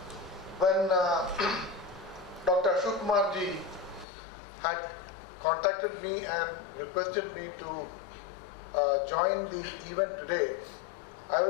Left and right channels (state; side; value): drops out; right; at 4.0 s